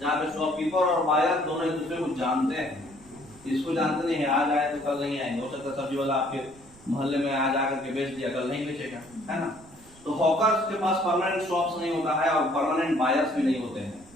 पे शॉपकीपर और बायर दोनों एक दूसरे को जानते हैं। इसको जानते नहीं है, आज आए तो कल नहीं आएंगे, हो सकता है सब्जी वाला आपके मोहल्ले में आज आकर के बेच दिया, कल नहीं बेचेगा, है ना। तो हॉकर्स के पास परमानेंट शॉप्स नहीं होता है और परमानेंट बायर्स भी नहीं होते हैं।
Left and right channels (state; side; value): noise; right; rumble, 24 dB below the sound